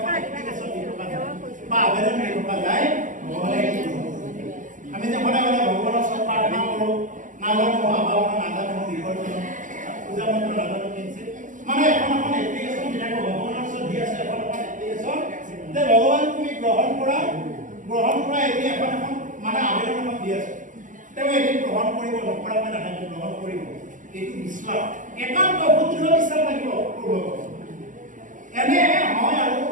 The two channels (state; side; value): late; left; 0.37 ms